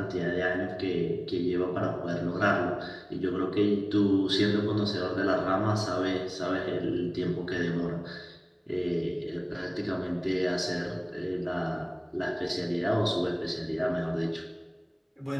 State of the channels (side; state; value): both; identical; correlation 1.00